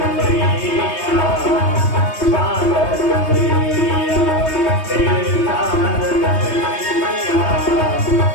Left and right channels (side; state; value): right; late; 3.2 ms